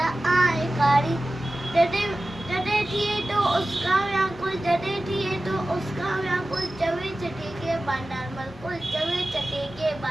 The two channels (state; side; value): normal; both; correlation 0.95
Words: आहे काणी। जॾहिं जॾहिं थिए तो उसका व्याकुल जॾहिं थिए तो उसका व्याकुल चवे चटे के बानर मलकुल चवे चटे के